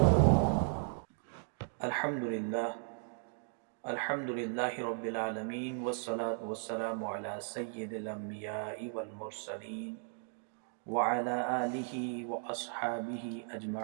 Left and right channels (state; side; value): silent; left; 54 dB below the other